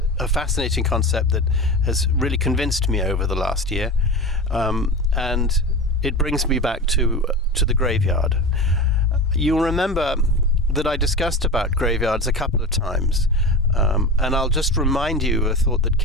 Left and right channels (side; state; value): both; normal; correlation 0.27